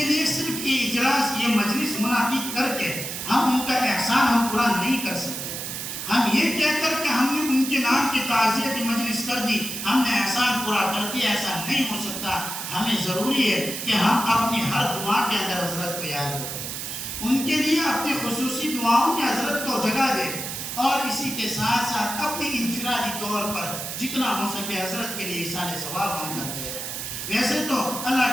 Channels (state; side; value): noise; right; hiss, 6 dB below the sound